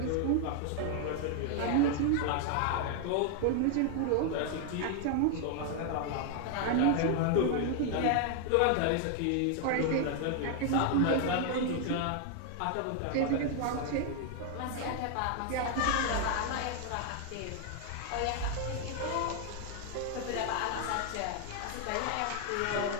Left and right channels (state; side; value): different; both; correlation 0.00